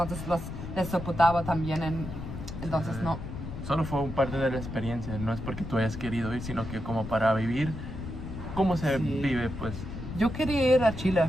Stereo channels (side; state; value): left; noise; rumble, 8 dB below the sound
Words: les soportaba también, entonces no. Solo fue un parte de la experiencia, no es porque tú hayas querido ir, sino que como para vivir cómo se vive, pues. Yo quería ir a Chile,